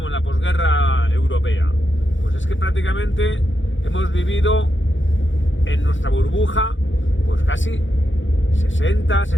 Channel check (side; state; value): right; late; 0.56 ms